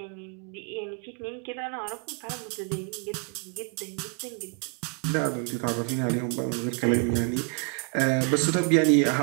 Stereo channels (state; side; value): quieter; left; 37.8 dB